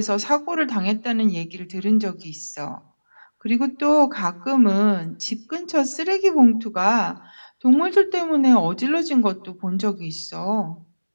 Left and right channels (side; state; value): both; inverted; correlation -1.00